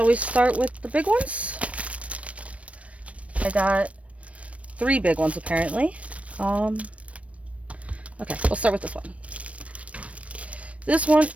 we start with the big ones? I got 3 big ones apparently. Okay, we'll start with this one. This one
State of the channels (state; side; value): late; left; 0.064 ms